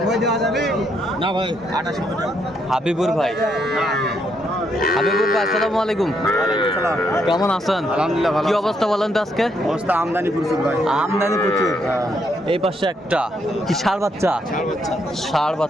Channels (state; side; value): normal; both; correlation 0.75